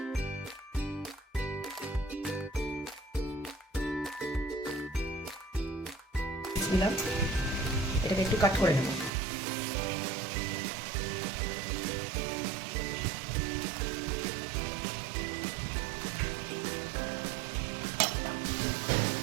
এটাকে একটু কাট করে নেব।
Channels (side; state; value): left; drops out; at 9.1 s